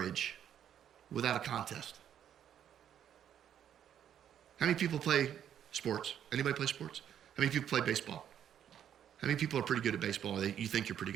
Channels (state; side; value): quieter; left; 9.7 dB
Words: without a contest. How many people play sports? Anybody play sports? How many people play baseball? How many people are pretty good at baseball? You think you're pretty